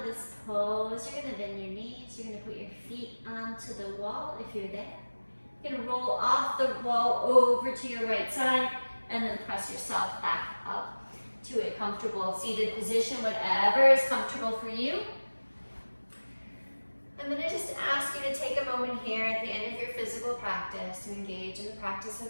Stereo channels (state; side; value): inverted; both; correlation -1.00